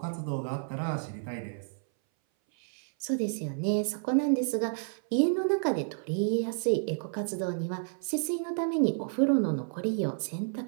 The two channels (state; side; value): silent; left; 58 dB below the other